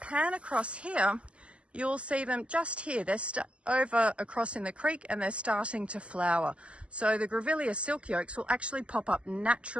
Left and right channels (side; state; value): left; late; 0.057 ms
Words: across here, you'll see them just here. They're over across in the creek, and they're starting to flower. So the Grevillea silky oaks will actually pop up